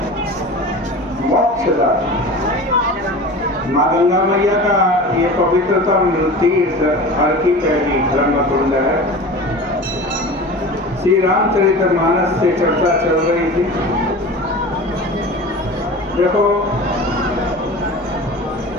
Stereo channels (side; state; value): both; normal; correlation 0.35